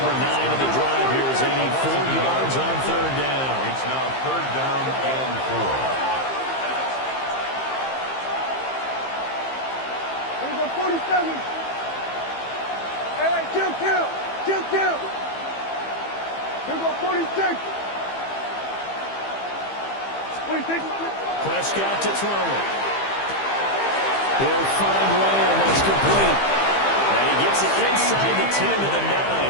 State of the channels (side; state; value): right; late; 15 ms